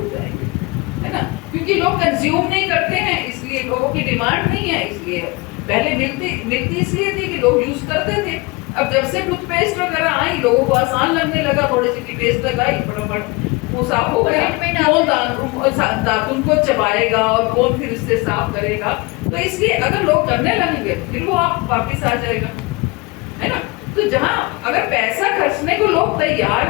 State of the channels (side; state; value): right; quieter; 25.4 dB